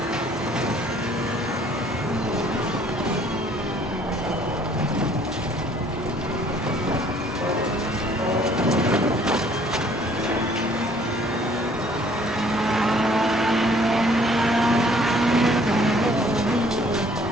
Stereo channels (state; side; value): normal; both; correlation 0.59